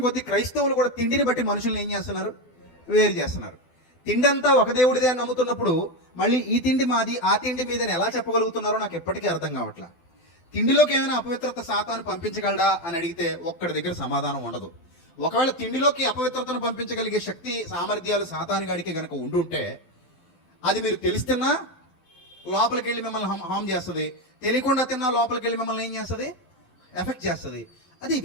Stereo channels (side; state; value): right; late; 12 ms